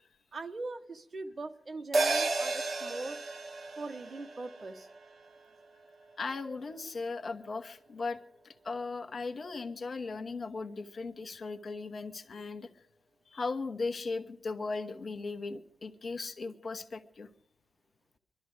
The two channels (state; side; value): normal; both; correlation 0.90